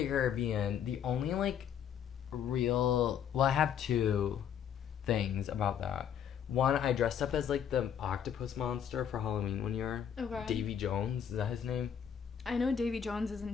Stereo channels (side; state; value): right; quieter; 8.5 dB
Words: Caribbean, the only, like, I have two things about that. One, I dressed up as, like, the octopus monster for Halloween one year. Okay. Davy Jones, is that his name? I know Davy Jones is a